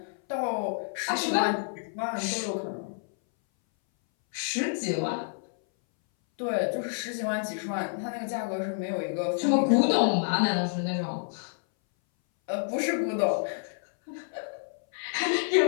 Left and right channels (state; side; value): silent; right; 59 dB below the other